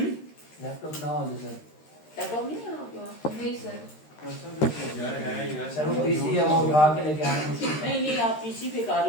लैपटॉप ना हो सर। लैपटॉप नहीं है आपके पास? नहीं सर, यार है यार सर वो पीसी है वो उठा के लेके आना मुश्किल है। नहीं आप पीसी पे कर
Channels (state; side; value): late; right; 13 ms